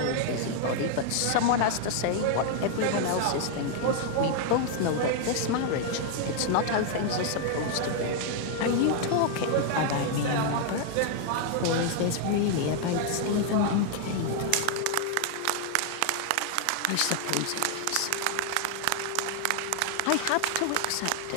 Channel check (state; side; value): different; both; correlation 0.00